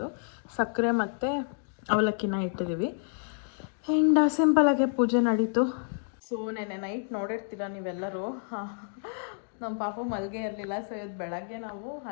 ಸಕ್ಕರೆ ಮತ್ತು ಅವಲಕ್ಕಿನ ಇಟ್ಟಿದ್ದೀವಿ. ಆ್ಯಂಡ್ ಸಿಂಪಲಾಗೆ ಪೂಜೆ ನಡೀತು. ಸೊ ನೆನ್ನೆ ನೈಟ್ ನೋಡಿರ್ತೀರ ನೀವೆಲ್ಲರೂ, ನಮ್ಮ ಪಾಪ ಮಲ್ಗೆ ಇರಲಿಲ್ಲ. ಸೊ ಇವತ್ತು ಬೆಳಗ್ಗೆ ನಾವು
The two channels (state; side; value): silent; right; digital silence